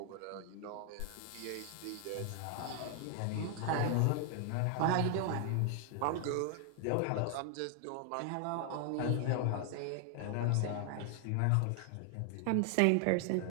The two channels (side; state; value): both; different; correlation 0.00